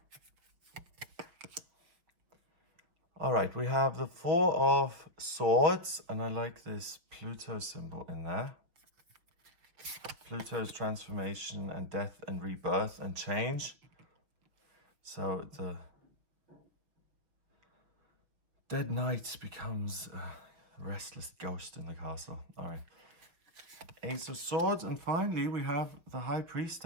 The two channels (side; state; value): left; late; 5.7 ms